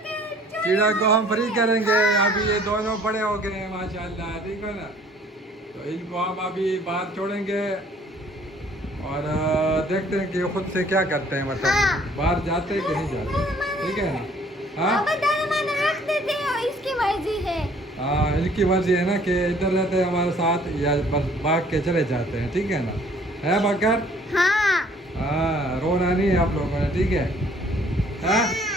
चिड़िया को हम फ्री करेंगे। अभी ये दोनों बड़े हो गए हैं माशाल्लाह, ठीक है ना। तो इनको हम अभी बाहर छोड़ेंगे और देखते हैं कि ये खुद से क्या करते हैं, मतलब बाहर जाते हैं कि नहीं जाते, ठीक है ना। हाँ इसकी मर्जी है। हाँ, इनकी मर्जी है ना कि इधर रहते हैं हमारे साथ या बस भाग के चले जाते हैं, ठीक है ना। है बकर? हाँ हाँ, रोना नहीं है आप लोगों ने, ठीक है। हाँ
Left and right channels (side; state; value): both; normal; correlation 0.57